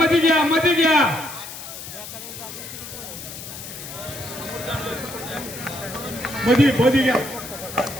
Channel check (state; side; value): noise; left; hiss, 11 dB below the sound